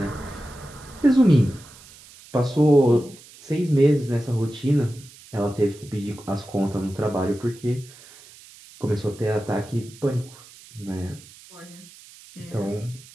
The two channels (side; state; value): right; noise; hiss, 21 dB below the sound